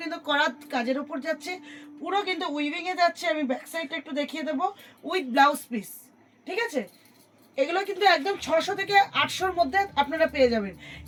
কিন্তু করাত কাজের ওপর যাচ্ছে, পুরো কিন্তু উইভিংয়ে যাচ্ছে। আমি ব্যাক সাইডটা একটু দেখিয়ে দেবো উইথ ব্লাউজ পিস, ঠিক আছে। এগুলো কিন্তু একদম 600 থেকে 800-র মধ্যে আপনারা পেয়ে যাবেন।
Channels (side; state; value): both; identical; correlation 1.00